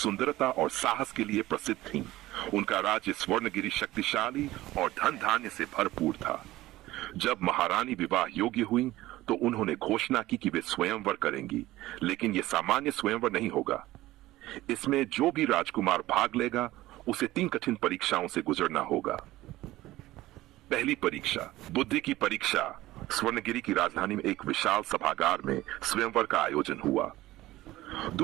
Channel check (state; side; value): quieter; left; 16.9 dB